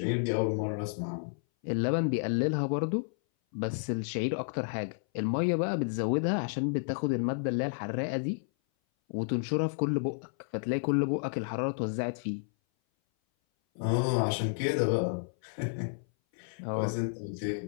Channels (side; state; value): right; silent; 57 dB below the other